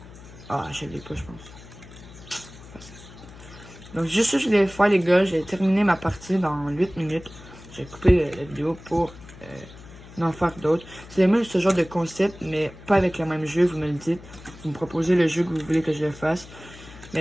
Ah, je l'ai pas, je pense. Donc, juste ça, je voulais faire, les gars. J'ai terminé ma partie dans 8 minutes. J'ai coupé la vidéo pour en faire d'autres. C'est même ce genre de concept, mais pas avec le même jeu, vous me le dites. Vous me proposez le jeu que vous voulez que je le fasse.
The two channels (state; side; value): noise; left; hum, 18 dB below the sound